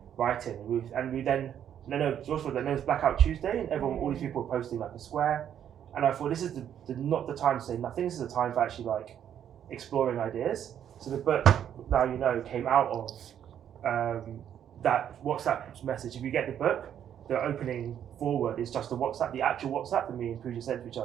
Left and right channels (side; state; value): left; quieter; 9.6 dB